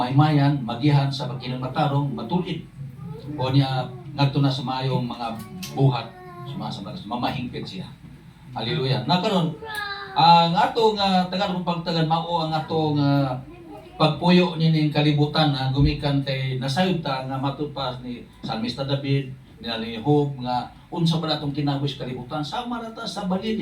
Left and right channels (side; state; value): both; identical; correlation 1.00